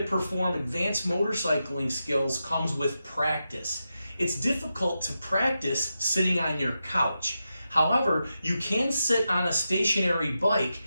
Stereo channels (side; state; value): both; inverted; correlation -0.89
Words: perform advanced motorcycling skills comes with practice. It's difficult to practice sitting on your couch. However, you can sit on a stationary bike